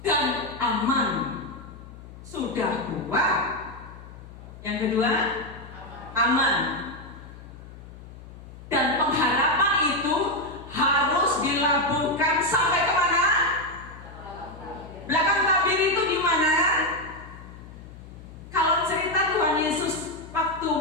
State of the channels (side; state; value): left; noise; hum, 16 dB below the sound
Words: dan aman. Sudah kuat. Yang kedua, aman. Dan pengharapan itu harus dilabuhkan sampai kemana? Belakang tabir itu di mana? Kalau cerita Tuhan Yesus waktu